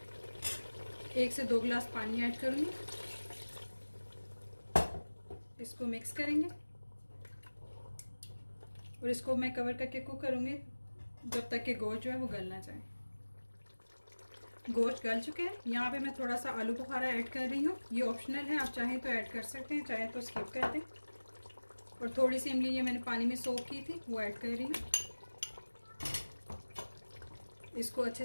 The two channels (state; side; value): inverted; both; correlation -1.00